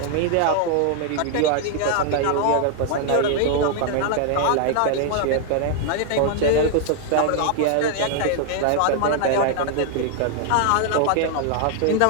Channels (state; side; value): different; both; correlation 0.00